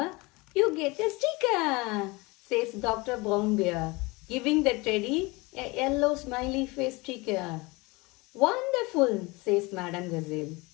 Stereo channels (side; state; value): right; quieter; 24.6 dB